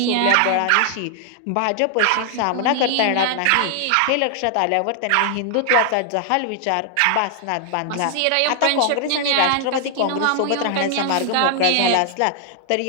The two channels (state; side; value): different; both; correlation 0.00